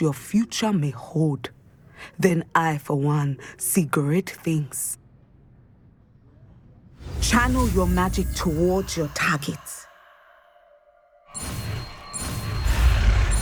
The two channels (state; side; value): identical; both; correlation 1.00